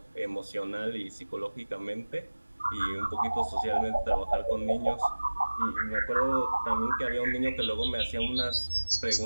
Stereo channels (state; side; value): inverted; both; correlation -1.00